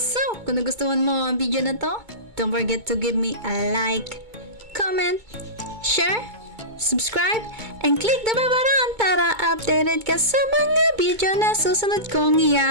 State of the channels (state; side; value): late; left; 2.2 ms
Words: So, kung nagustuhan mo ang video na to, don't forget to give me a like, comment, share, subscribe, and click the bell button para updated ka sa mga video na susunod kong